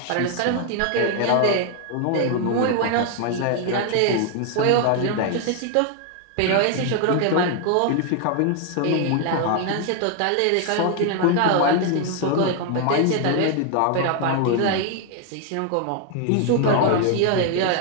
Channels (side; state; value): both; different; correlation 0.00